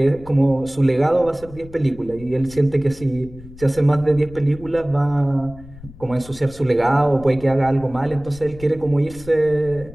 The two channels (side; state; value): left; noise; rumble, 18 dB below the sound